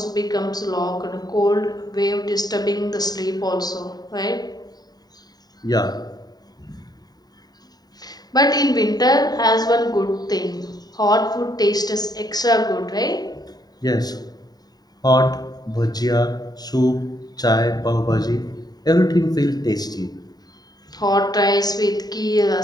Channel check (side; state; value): right; late; 0.19 ms